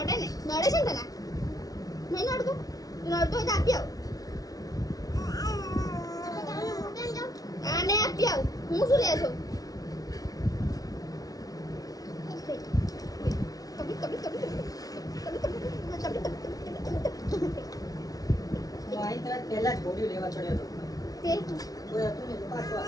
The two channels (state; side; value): late; right; 0.18 ms